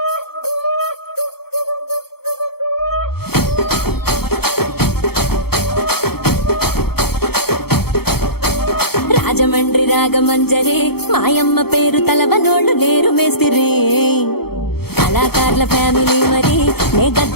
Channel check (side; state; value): right; late; 0.96 ms